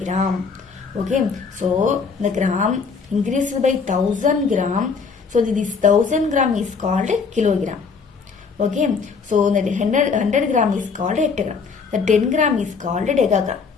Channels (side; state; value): right; quieter; 5.2 dB